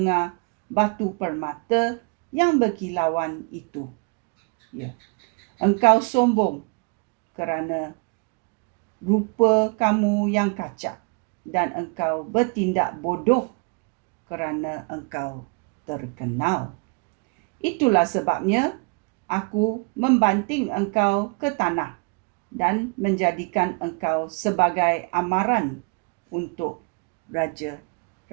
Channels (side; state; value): left; quieter; 34.4 dB